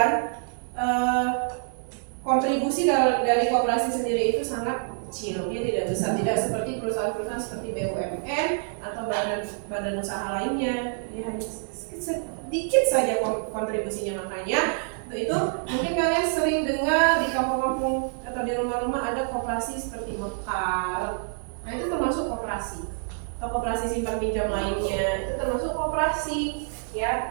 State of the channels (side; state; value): left; silent; 60 dB below the other